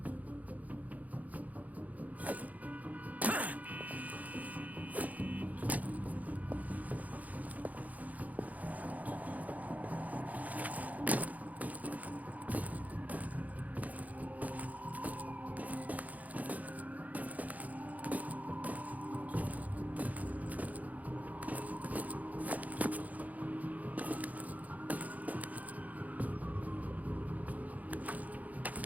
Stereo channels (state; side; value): late; left; 0.076 ms